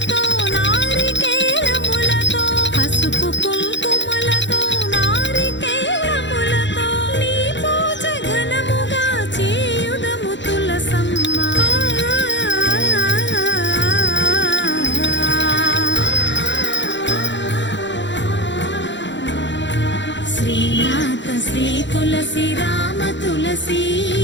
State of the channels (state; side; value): late; right; 0.53 ms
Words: నారికేళములతో, పసుపు కుంకుమలతో నారికేళములతో నీ పూజ ఘనముగా చేయుదము తులసమ్మ. శ్రీనాథ శ్రీ తులసి రామ తులసి,